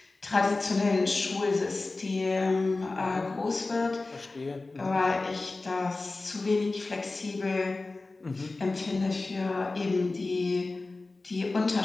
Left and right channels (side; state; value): right; quieter; 3.4 dB